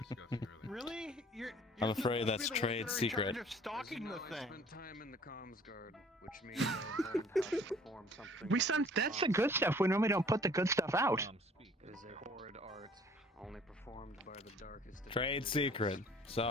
earlier. Really? You're I'm afraid supposed that's to be the trade ones that are in secret. charge of stalking the I thing. spent time in the comms guard, which means I learned how to perform something. That's the good stuff. We normally don't put the good stuff out. It is a horrid art, only performed by the darkest. of Trade individuals. secret.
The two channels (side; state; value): both; normal; correlation 0.53